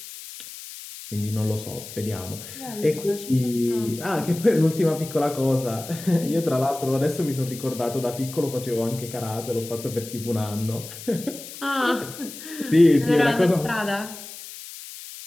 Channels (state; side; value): noise; left; hiss, 13 dB below the sound